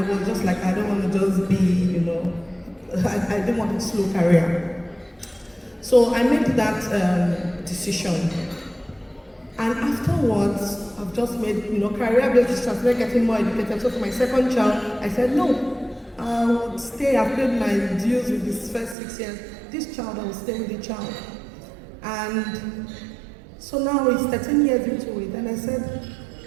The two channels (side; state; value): left; drops out; at 18.9 s